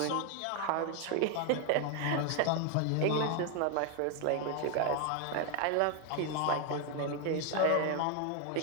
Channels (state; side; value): different; both; correlation 0.01